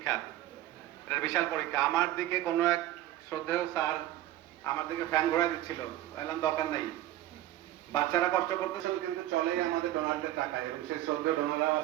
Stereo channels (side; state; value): left; quieter; 14.3 dB